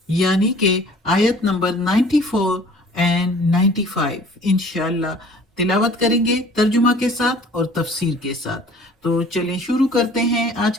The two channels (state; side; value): normal; both; correlation 0.50